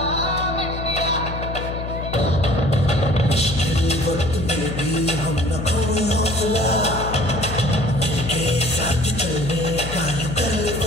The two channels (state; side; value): noise; left; hum, 7 dB below the sound